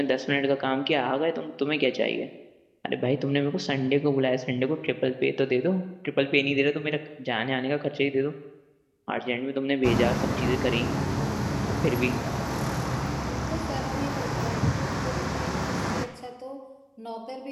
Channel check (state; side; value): identical; both; correlation 1.00